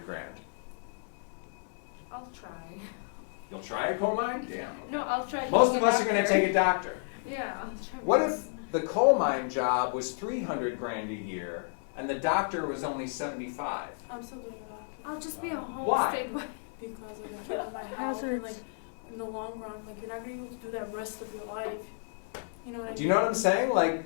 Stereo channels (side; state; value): right; silent; digital silence